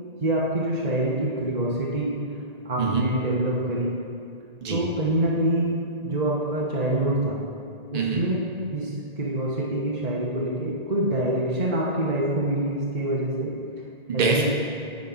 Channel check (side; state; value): left; late; 1.8 ms